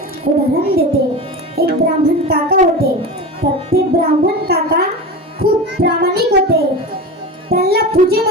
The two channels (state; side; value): normal; both; correlation 0.27